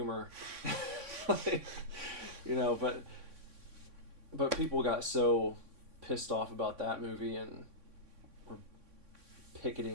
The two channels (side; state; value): left; late; 3.6 ms